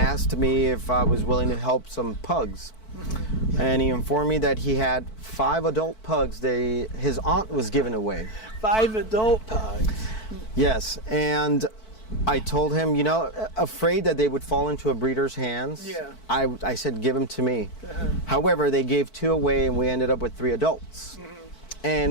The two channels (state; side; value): late; right; 4.5 ms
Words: me if I was willing to help some pugs. And he informed me that he had 5 adult pugs his aunt was giving away. 5 adult pugs? Yes, and I told him, afraid that they would fall into a breeder's hands. Yeah. I said, give them to me. However, they gave 2 away, and we ended up with 3 adults.